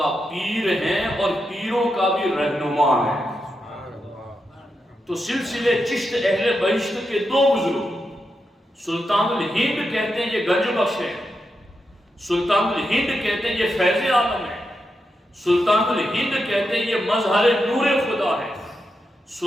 پیر ہیں اور پیروں کا بھی رہنما ہے۔ تو سلسلے چشت اہل بہشت کے دو بزرگ، سلطان الہند کہتے ہیں یہ گنج بخش ہے، سلطان الہند کہتے ہیں یہ فیض عالم ہے، سلطان الہند کہتے ہیں یہ مظہر نور خدا ہے،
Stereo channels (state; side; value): normal; both; correlation 0.86